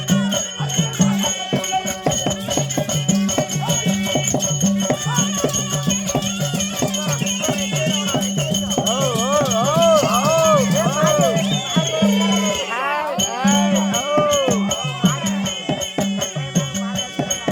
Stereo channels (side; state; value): both; identical; correlation 1.00